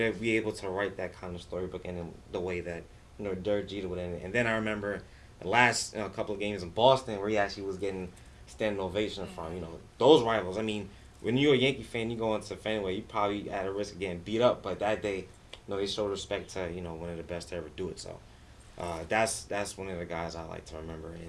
be able to write that kind of storybook in the way that, Derek Jeter would end it. And then I remember the last couple of games in Boston where he actually was getting standing ovation from, those rivals. When you're a Yankee fan, you go into Fenway, you probably at a risk of getting beat up. But that day, they showed respect to, one of the best to ever do it. So that's one of the guys I like to remember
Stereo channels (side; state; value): both; identical; correlation 1.00